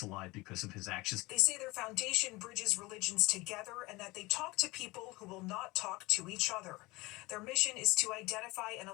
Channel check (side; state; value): right; quieter; 22.3 dB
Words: alive because of his actions. They say their foundation bridges religions together and that they talk to people who will not talk to each other. Their mission is to identify and